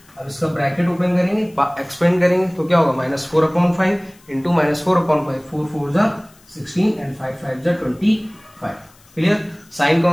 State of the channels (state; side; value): noise; left; hiss, 29 dB below the sound